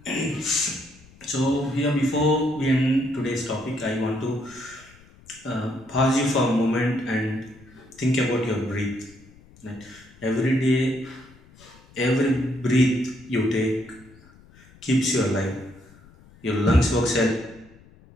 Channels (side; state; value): left; noise; rumble, 25 dB below the sound